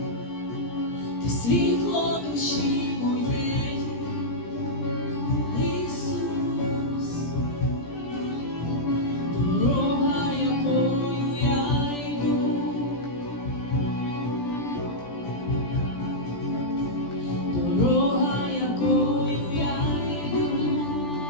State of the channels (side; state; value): right; late; 17 ms